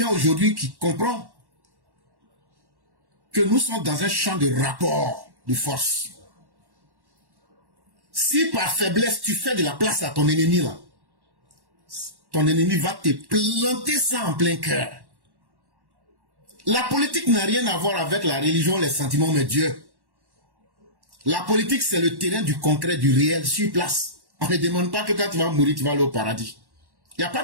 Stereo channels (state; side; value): late; left; 1.1 ms